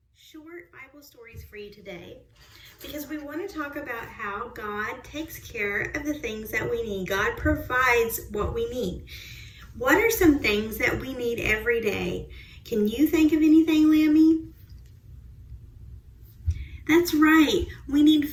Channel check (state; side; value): identical; both; correlation 1.00